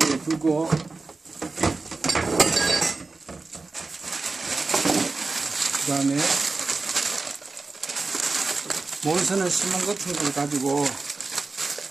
두고 그 다음에 몬스는 시몬 같은 걸 가지고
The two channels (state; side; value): quieter; left; 3.8 dB